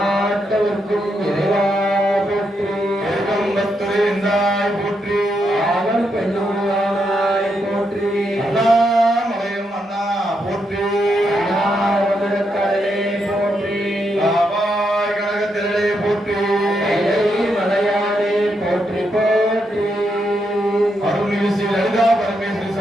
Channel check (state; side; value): normal; both; correlation 0.81